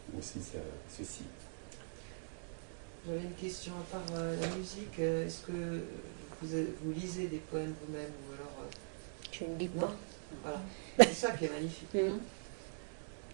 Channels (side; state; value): left; silent; digital silence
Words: aussi ceci. J'avais une question à part la musique. Est-ce que vous lisez des poèmes vous-même ou alors Je ne lis non. pas. Voilà. C'est ça qui est magnifique.